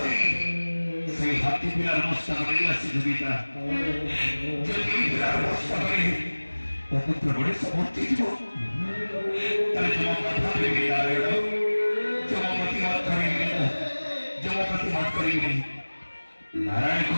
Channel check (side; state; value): both; inverted; correlation -1.00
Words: সেই হাতি পিলার মস্তা করে আসি পিতা যদি পিলার মস্তা করে অপুত্র বড়ে সমর্থি দিব তাহলে তোমার কথা ভেবে নারায়ণ জমপতি মত করিবে জমপতি মত করিবে नारायण